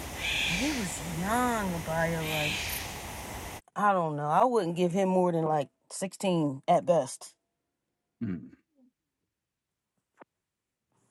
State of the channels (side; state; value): both; identical; correlation 1.00